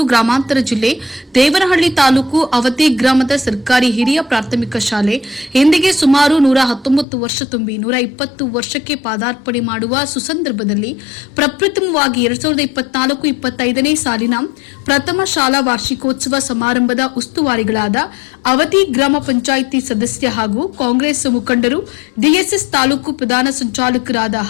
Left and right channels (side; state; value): right; drops out; at 7.1 s